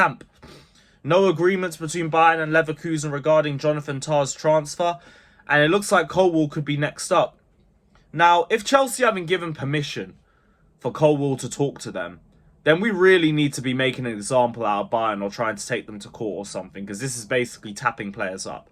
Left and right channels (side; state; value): both; identical; correlation 1.00